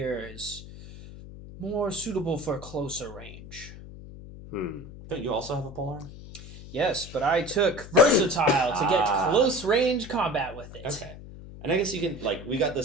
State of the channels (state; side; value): noise; left; hum, 15 dB below the sound